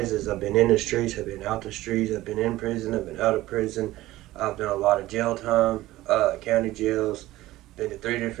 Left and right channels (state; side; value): quieter; left; 16.7 dB